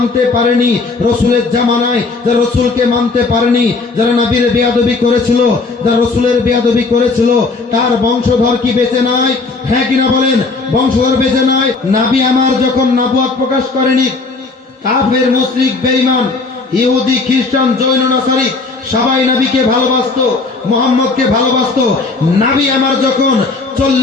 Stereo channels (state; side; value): quieter; right; 3.9 dB